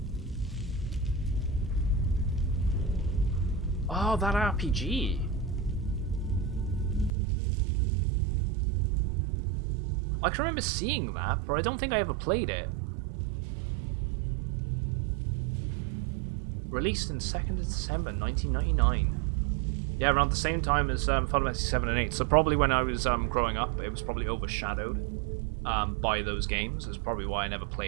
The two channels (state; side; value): drops out; left; at 7.1 s